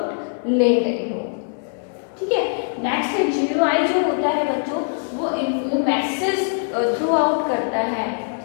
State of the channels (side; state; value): right; silent; 64 dB below the other